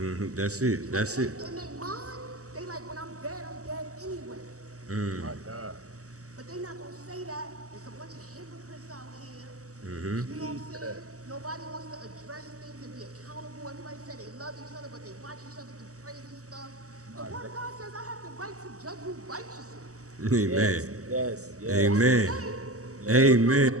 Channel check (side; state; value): left; late; 0.66 ms